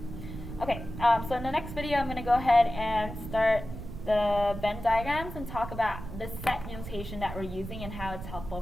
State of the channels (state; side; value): noise; right; rumble, 10 dB below the sound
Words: Okay, so in the next video I'm going to go ahead and start the Venn diagrams and talk about the set notation that we're using and how it's helpful